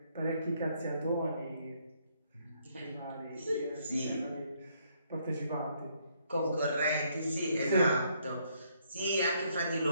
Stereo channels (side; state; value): both; inverted; correlation -0.70